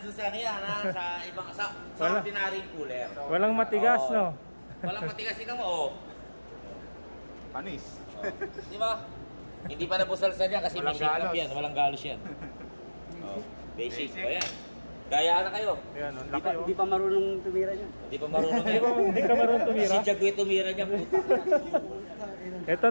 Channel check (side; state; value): both; inverted; correlation -1.00